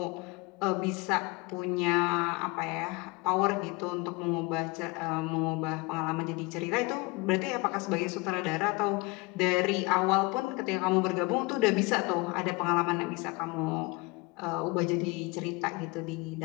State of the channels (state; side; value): quieter; right; 25.3 dB